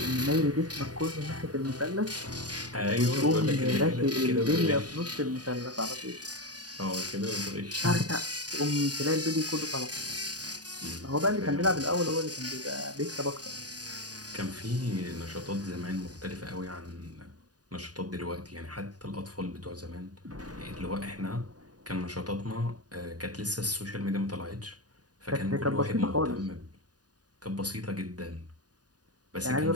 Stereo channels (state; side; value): late; left; 0.68 ms